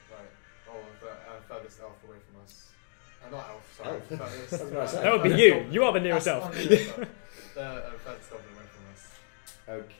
right, or the furthest elf away from us. Not elf, sorry. Elf. Furthest, That would be furthest you. goblin. You are the nearest That's elf. the nearest elf. The furthest goblin away from us.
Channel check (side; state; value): right; silent; digital silence